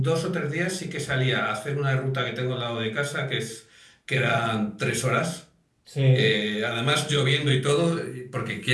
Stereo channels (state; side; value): identical; both; correlation 1.00